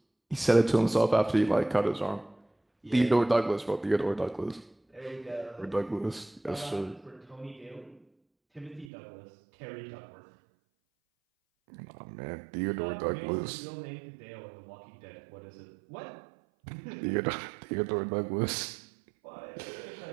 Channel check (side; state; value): left; drops out; at 8.9 s